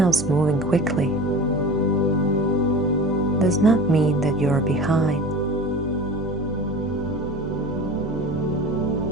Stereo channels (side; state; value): both; normal; correlation 0.36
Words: moving quickly does not mean that you're behind.